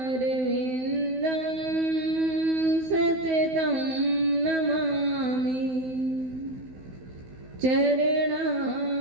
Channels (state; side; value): late; left; 16 ms